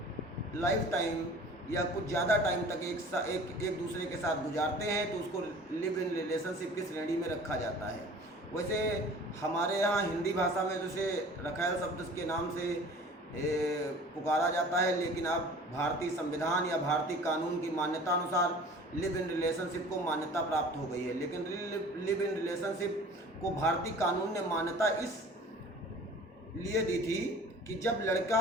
लाइफ टाइम या कुछ ज़्यादा टाइम तक एक दूसरे के साथ गुजारते हैं तो उसको लिव इन रिलेशनशिप की श्रेणी में रखा जाता है। वैसे हमारे यहाँ हिंदी भाषा में जैसे रखैल शब्द के नाम से पुकारा जाता है, लेकिन अब भारतीय संविधान या भारतीय कानून की मान्यता अनुसार लिव इन रिलेशनशिप को मान्यता प्राप्त हो गई है। लेकिन लिव इन रिलेशनशिप को भारतीय कानून ने मान्यता इस लिए दी थी कि जब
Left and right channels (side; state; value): both; normal; correlation 0.45